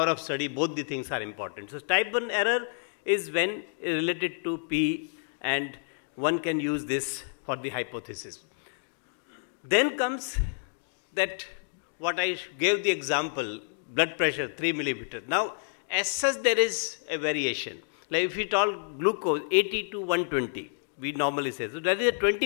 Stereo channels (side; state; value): right; silent; digital silence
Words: of study, both the things are important. So type 1 error is when related to P, and one can use this for the hypothesis. Then comes that what I gave the example, blood pressure 3 millimeter. Now as such there is a variation. Like if we talk glucose 80 to 120, we normally say. So there is a